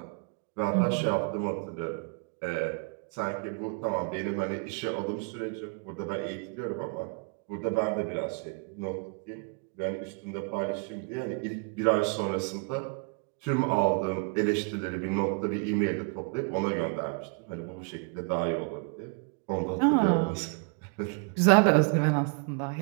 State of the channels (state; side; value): quieter; left; 36.7 dB